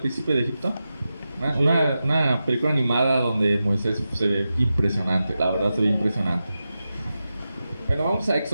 de Egipto? Una película animada donde Moisés se ve impresionante, la verdad se ve impresionante. Bueno, vamos a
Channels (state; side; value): inverted; both; correlation -0.92